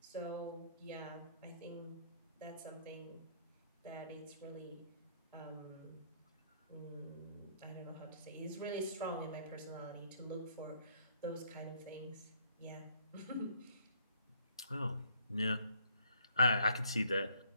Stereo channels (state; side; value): inverted; both; correlation -0.66